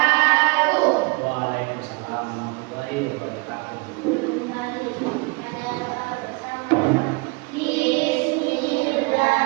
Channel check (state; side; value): quieter; left; 28.3 dB